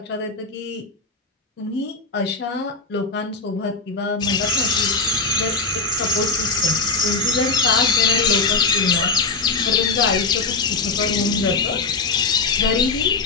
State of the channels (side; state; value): right; quieter; 3.9 dB